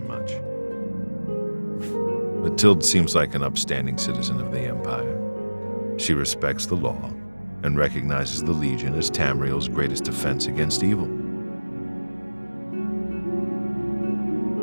Mathilde seems like an upstanding citizen of the Empire. She respects the law and recognizes the Legion as Tamriel's greatest defense against evil.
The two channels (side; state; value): both; inverted; correlation -1.00